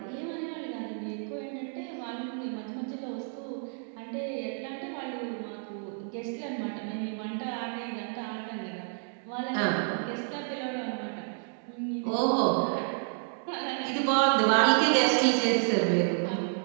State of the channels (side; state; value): left; silent; 58 dB below the other